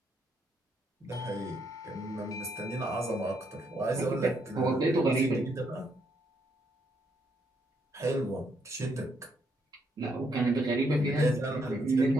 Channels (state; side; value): normal; both; correlation 0.75